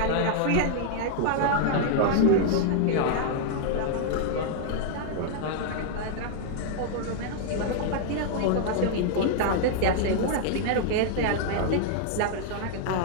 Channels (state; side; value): different; both; correlation -0.01